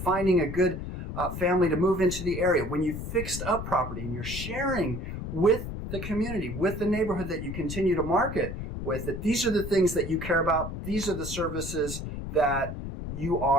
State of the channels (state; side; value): noise; left; rumble, 7 dB below the sound